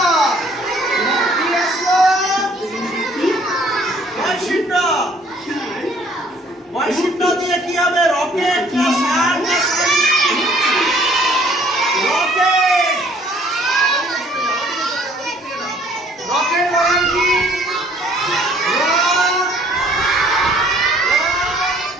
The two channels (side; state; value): both; normal; correlation 0.59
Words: কি আসলো? বয়সিন্দ্রা। বয়সিন্দ্রা দিয়ে কি হবে? রকেট না সার না সারি? রকেট। রকেট মানে কি?